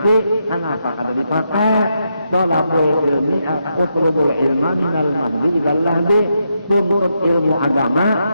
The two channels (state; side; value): inverted; both; correlation -0.82